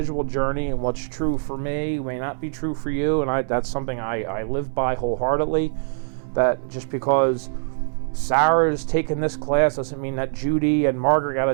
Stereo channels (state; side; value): silent; left; 63 dB below the other